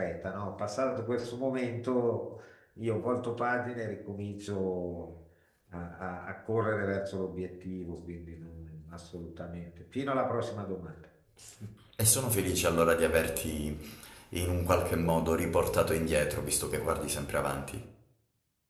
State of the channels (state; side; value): identical; both; correlation 1.00